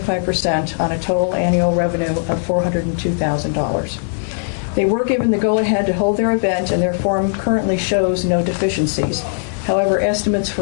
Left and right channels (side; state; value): right; silent; digital silence